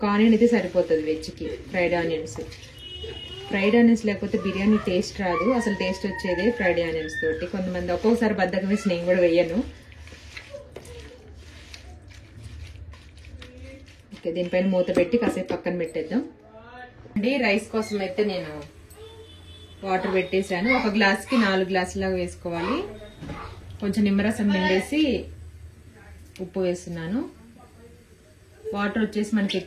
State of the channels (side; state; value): both; identical; correlation 1.00